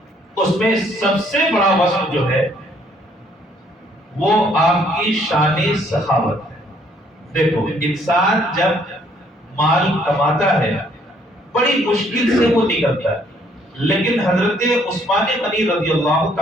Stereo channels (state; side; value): normal; both; correlation 0.65